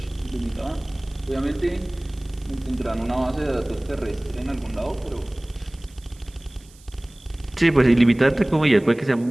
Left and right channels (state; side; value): noise; right; hiss, 26 dB below the sound